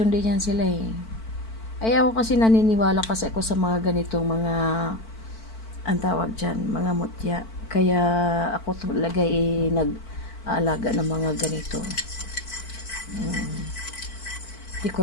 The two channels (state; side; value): late; right; 4.5 ms